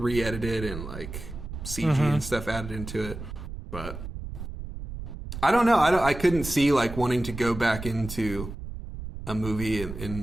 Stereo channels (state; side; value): noise; right; rumble, 9 dB below the sound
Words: and like CG and stuff added into it. But I don't know. I couldn't see like wanting to go back into a movie